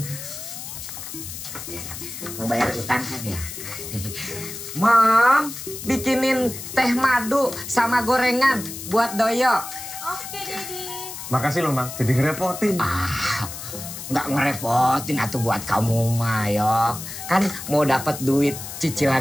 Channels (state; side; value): noise; left; hiss, 10 dB below the sound